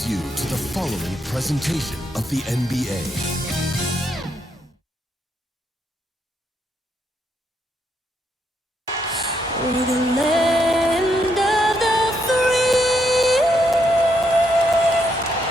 you to the following presentation of the NBA. We're the land of the free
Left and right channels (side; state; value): both; normal; correlation 0.77